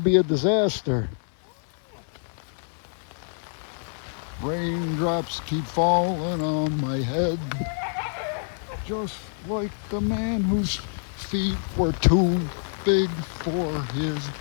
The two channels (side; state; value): right; silent; 61 dB below the other